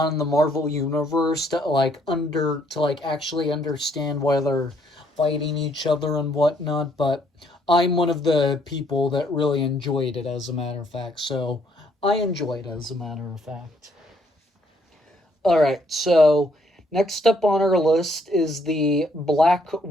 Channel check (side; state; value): both; normal; correlation 0.68